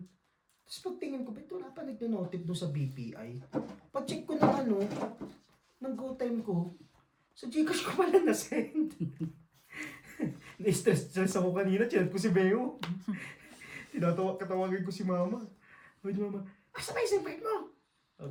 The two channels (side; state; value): both; identical; correlation 1.00